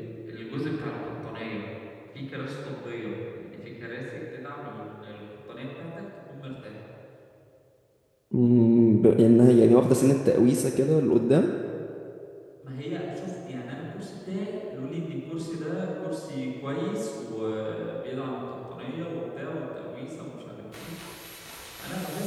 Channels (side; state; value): both; identical; correlation 1.00